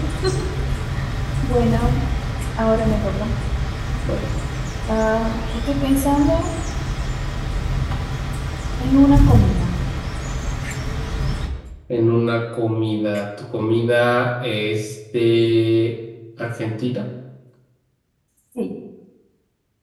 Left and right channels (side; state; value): both; identical; correlation 1.00